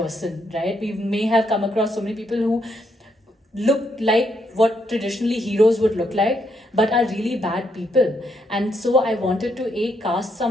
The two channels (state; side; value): normal; both; correlation 0.76